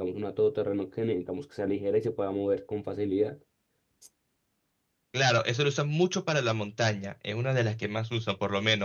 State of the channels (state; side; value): identical; both; correlation 1.00